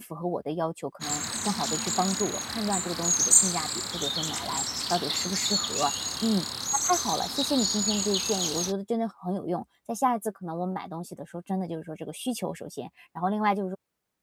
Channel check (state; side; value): identical; both; correlation 1.00